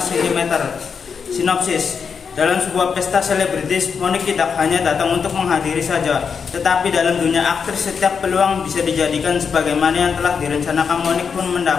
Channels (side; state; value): right; quieter; 6.2 dB